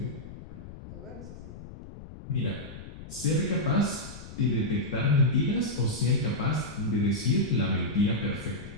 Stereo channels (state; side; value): noise; left; rumble, 14 dB below the sound